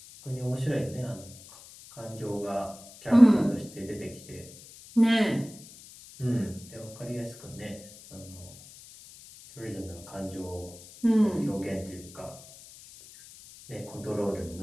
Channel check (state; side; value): noise; left; hiss, 19 dB below the sound